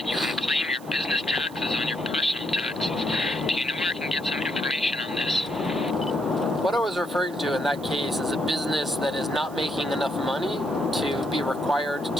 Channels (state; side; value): noise; right; hiss, 22 dB below the sound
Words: you can claim your business taxes on your personal taxes. Do you know where I can get some information on this? What I was referring to in that case is a business that is not making enough money to be required